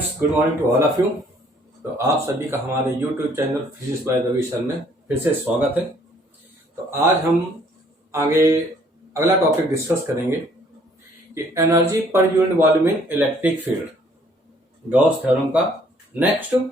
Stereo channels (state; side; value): normal; both; correlation 0.62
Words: good morning to all of you. तो आप सभी का हमारे YouTube channel physics by Ravi sir में फिर से स्वागत है। तो आज हम आगे अगला टॉपिक डिस्कस करेंगे कि एनर्जी पर यूनिट वॉल्यूम इन इलेक्ट्रिक फील्ड, गॉस थ्योरम का नेक्स्ट